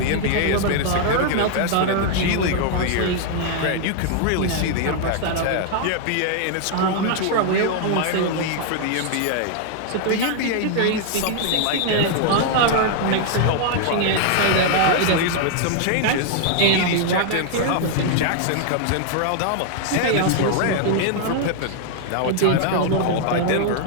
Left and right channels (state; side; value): different; both; correlation 0.00